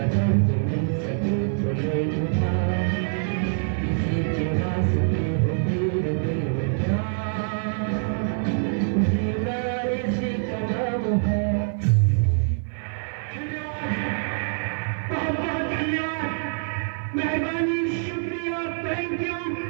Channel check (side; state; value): left; silent; 55 dB below the other